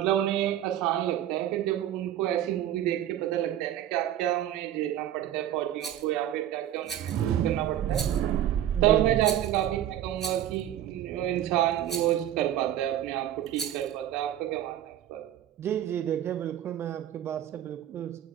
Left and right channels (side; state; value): left; quieter; 11.7 dB